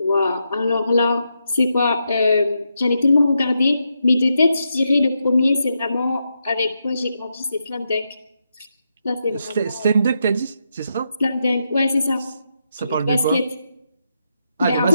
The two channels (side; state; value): both; inverted; correlation -0.83